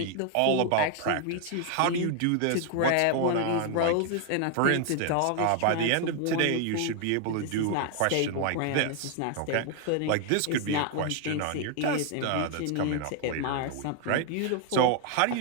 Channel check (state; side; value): different; both; correlation 0.00